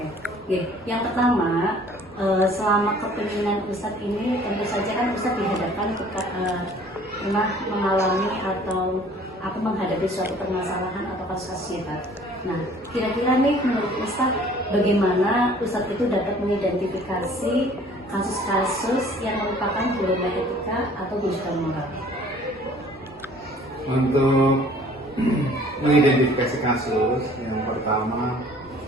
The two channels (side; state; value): both; normal; correlation 0.53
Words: Yang pertama, selama kepemimpinan Ustadz ini tentu saja kan Ustadz dihadapkan pernah mengalami atau menghadapi suatu permasalahan atau kasus hebat. Nah, kira-kira nih menurut Ustadz, bagaimana Ustadz itu dapat mengidentifikasi kasus-kasus yang merupakan dilema etika atau bujukan moral? Untuk mengidentifikasi kasus, yang pertama